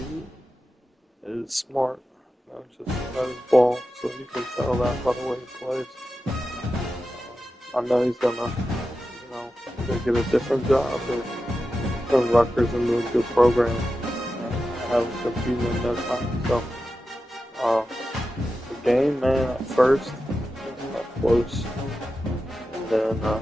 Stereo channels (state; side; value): normal; both; correlation 0.92